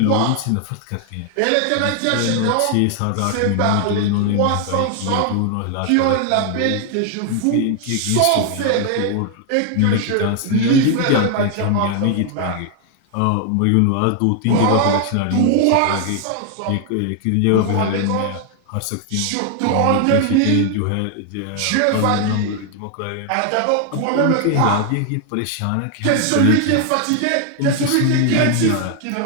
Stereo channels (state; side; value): different; both; correlation 0.00